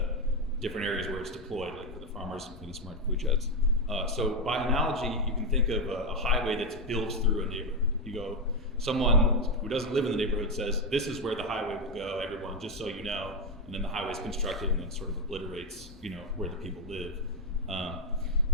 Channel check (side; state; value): both; normal; correlation 0.06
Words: different areas where it's deployed, like for the farmers and for the smart food sheds. So by analogy, you can think of a highway that's built through a neighborhood. You go, someone who doesn't live in the neighborhood says, this is where the highway will go, everyone, just so you know, and then the highway's constructed and then sort of obliterates, where the people live.